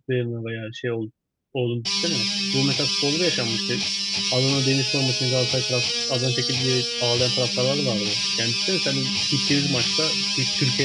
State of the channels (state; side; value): identical; both; correlation 1.00